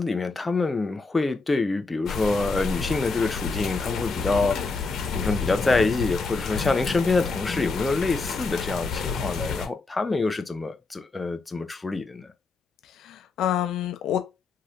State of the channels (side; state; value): right; quieter; 3.8 dB